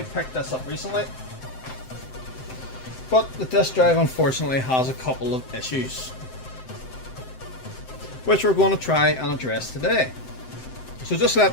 picked this up recently. But the disk drive unfortunately has a couple of issues, which we're going to try and address today. So just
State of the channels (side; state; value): right; late; 7.8 ms